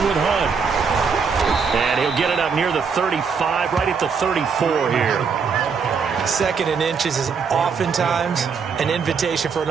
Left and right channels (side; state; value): left; quieter; 5.8 dB